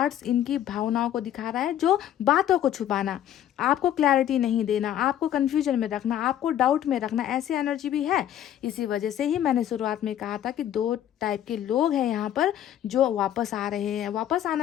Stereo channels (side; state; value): right; quieter; 11.2 dB